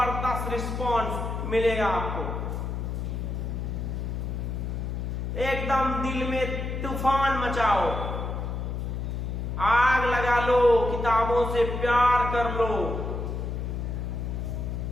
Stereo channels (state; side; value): noise; left; hum, 3 dB below the sound